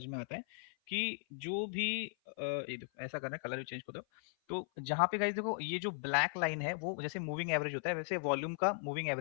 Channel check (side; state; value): right; silent; 53 dB below the other